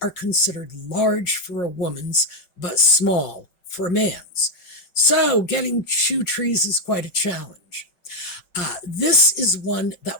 considered large for a woman's but small for a man's. So getting shoe trees is quite a challenge. This is one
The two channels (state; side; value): late; right; 5.7 ms